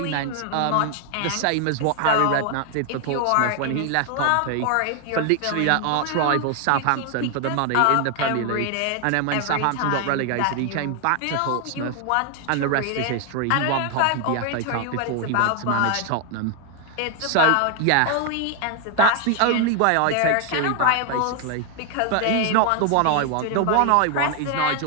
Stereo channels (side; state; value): both; different; correlation 0.00